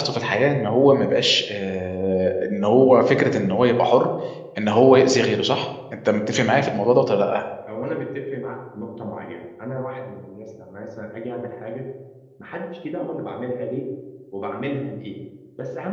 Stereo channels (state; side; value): identical; both; correlation 1.00